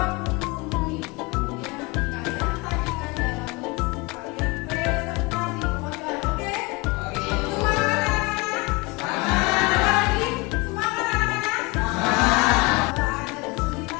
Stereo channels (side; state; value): right; quieter; 25.4 dB